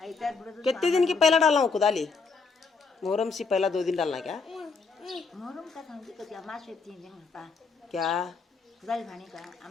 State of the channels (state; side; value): quieter; right; 4.6 dB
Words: कितने दिन की पहला डालना हूँ खुदाली मुहर्रम से पहला 2 दिन डालना क्या मुहर्रम का समझी तो अमास से 3 दिन होता क्या खुदाल भाने का